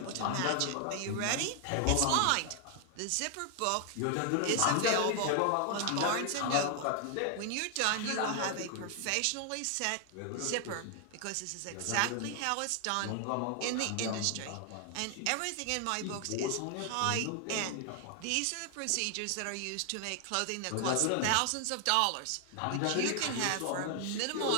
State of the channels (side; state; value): both; different; correlation 0.00